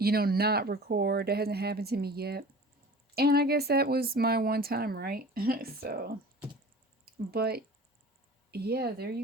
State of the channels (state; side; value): normal; both; correlation 0.41